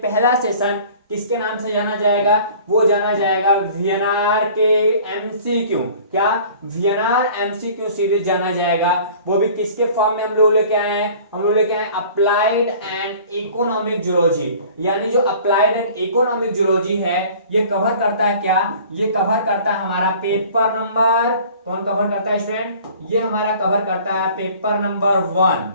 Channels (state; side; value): inverted; both; correlation -0.48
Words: पहला सेशन किसके नाम से जाना जाएगा, वो जाना जाएगा वीएनआर के एमसीक्यू। क्या, वीएनआर एमसीक्यू सीरीज जाना जाएगा। वो भी किसके फॉर्म में हम लोग लेके आए हैं, हम लोग लेके आए अप्लाइड एंड इकोनॉमिक जूलॉजी। यानी जो अप्लाइड एंड इकोनॉमिक जूलॉजी है, ये कवर करता है क्या, ये कवर करता है हमारा पेपर नंबर, कौन कवर करता है स्टूडेंट, ये हमारा कवर करता है पेपर नंबर 1।